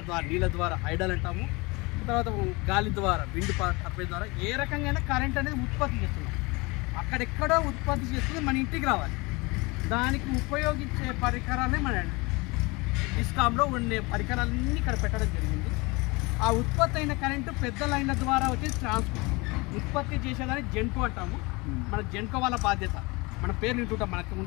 ద్వారా నీళ్ళ ద్వారా హైడల్ అంటాము, తర్వాత గాలి ద్వారా విండ్ టర్బైన్ ద్వారా ఏ రకంగా కరెంట్ అనేది ఉత్పత్తి చేస్తున్నాం. అక్కడెక్కడో ఉత్పత్తి చేస్తుంది మన ఇంటికి రావాలి. దానికి ఉపయోగించే పరికరాలే మన డిస్కామ్లో ఉండే పరికరాలన్నీ ఇక్కడ పెట్టడం జరిగింది. ఆ ఉత్పత్తి అయిన కరెంటు పెద్ద లైన్ల ద్వారా వచ్చేసి ట్రాన్స్పోర్ట్ ఉత్పత్తి చేసేదాన్ని జెన్కో అంటాము. మన జెన్కో వాళ్ళ బాధ్యత, మన పేరు వింటుంటాం. మనకు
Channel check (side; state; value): right; quieter; 25.5 dB